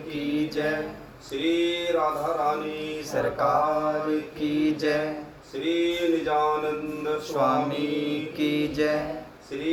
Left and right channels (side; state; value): both; identical; correlation 1.00